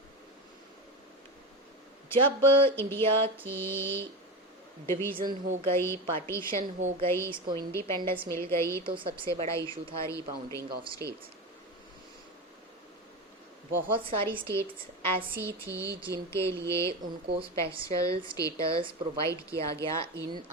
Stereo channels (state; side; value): normal; both; correlation 0.22